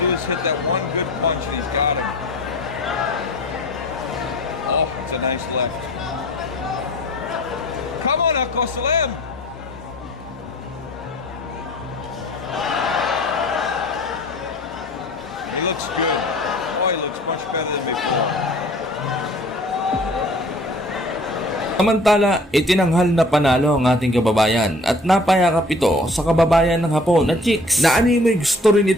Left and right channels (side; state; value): both; normal; correlation 0.49